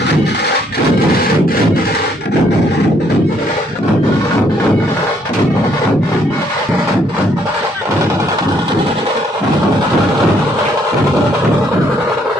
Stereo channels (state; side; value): normal; both; correlation 0.68